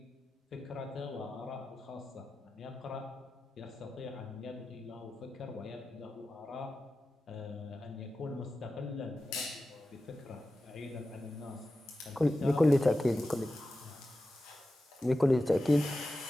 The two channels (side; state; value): both; normal; correlation 0.93